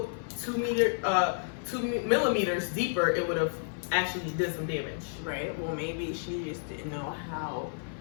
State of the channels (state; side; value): silent; right; 57 dB below the other